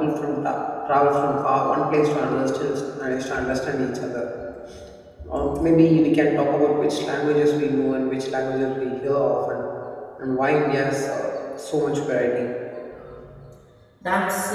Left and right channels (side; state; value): both; identical; correlation 1.00